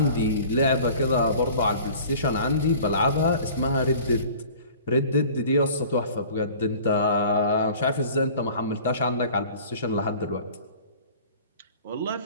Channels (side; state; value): both; inverted; correlation -0.46